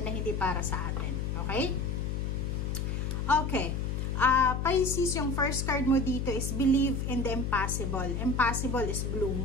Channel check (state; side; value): noise; left; hum, 1 dB below the sound